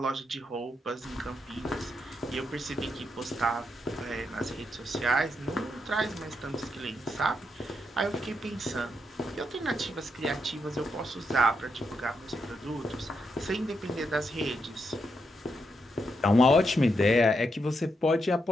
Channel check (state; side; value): normal; both; correlation 0.82